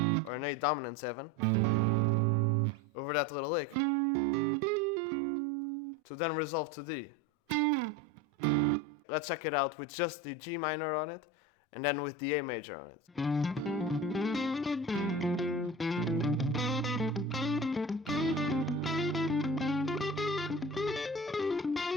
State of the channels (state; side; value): normal; both; correlation 0.31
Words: or an A dominant 7 over that little lick to then resolve to D. Let's check it out with just the G minor on it and then with the A major on it.